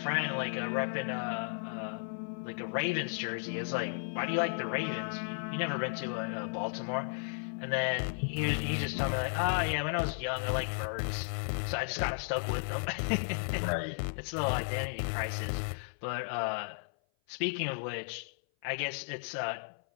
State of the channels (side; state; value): right; silent; 55 dB below the other